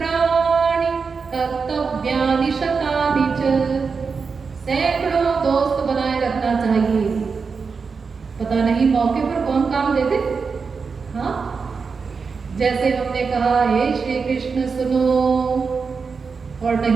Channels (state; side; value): quieter; left; 5.2 dB